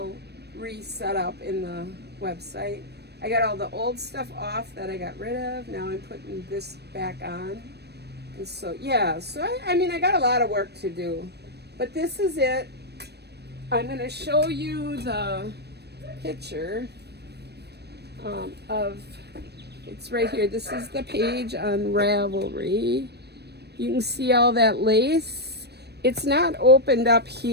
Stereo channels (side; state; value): left; late; 0.48 ms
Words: reset up in the website. I got all the old stuff off that I got rid of. Now I'm putting this back on. And so, yeah, I got a lot of work to do. But this is it. I'm going to show you the picture of It's right here. This is the page on Ravelry. You can see all that lace. It's not opened up